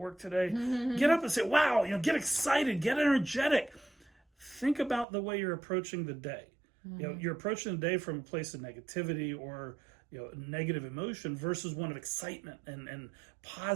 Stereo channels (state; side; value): drops out; left; at 5.1 s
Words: today, get up and say, wow, get excited, get energetic. Think about the way you're approaching the day. You're approaching the day from a place of negativity or negative emotion versus one of excitement and